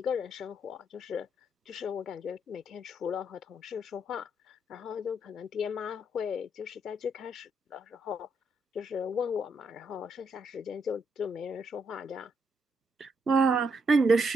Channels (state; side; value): normal; both; correlation 0.76